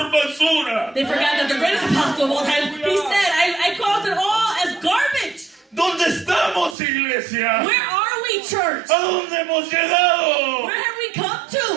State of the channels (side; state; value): left; drops out; at 6.8 s